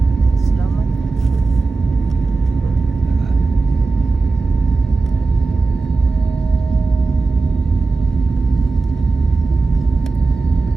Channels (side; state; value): left; quieter; 3.8 dB